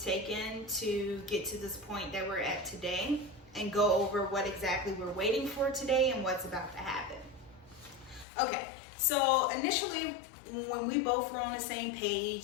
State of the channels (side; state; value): right; drops out; at 8.2 s